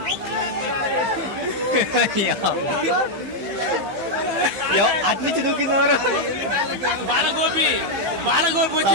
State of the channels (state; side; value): late; left; 15 ms